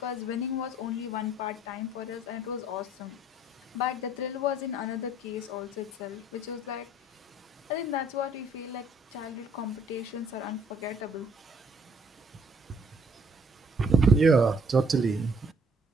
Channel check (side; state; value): both; normal; correlation 0.62